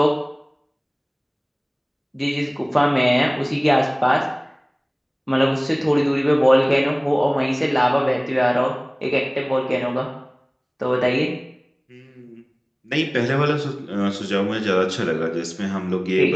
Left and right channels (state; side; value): identical; both; correlation 1.00